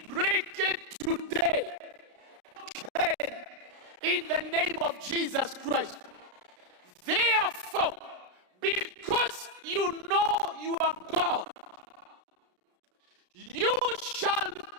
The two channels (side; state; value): left; late; 33 ms